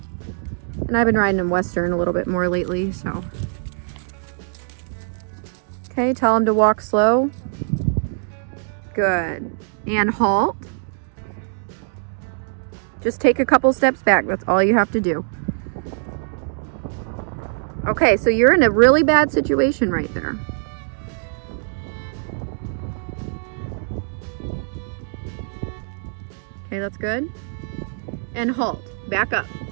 And I've been riding him Western a little bit more lately, so. Okay, tell him to walk slow. Good. And halt. Just take a couple steps back, that's all you have to do. Okay, so you're in a really bad situation right there. Okay, that's good. And halt. Back up.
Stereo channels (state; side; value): silent; left; 64 dB below the other